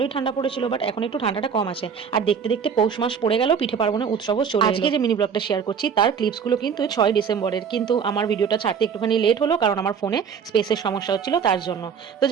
ঠান্ডা পড়েছিল, বাট এখন একটু ঠান্ডাটা কম আছে। আর দেখতে দেখতে পৌষ মাস পড়ে গেল, পিঠে পার্বণের উৎসবও চলে এলো। আজকে যে মিনি ব্লগটা শেয়ার করছি তার ক্লিপসগুলো কিন্তু 6 ডিসেম্বরের, কিন্তু আমার ভিডিওটা ছাড়তে একটুখানি লেট হলো, কারণ আমার ফোনে স্পেসের সমস্যা হচ্ছিল তার জন্য। তো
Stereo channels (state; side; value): quieter; left; 6.9 dB